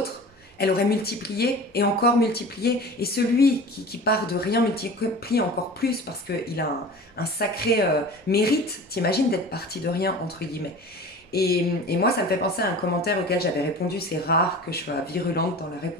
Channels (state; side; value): normal; both; correlation 0.37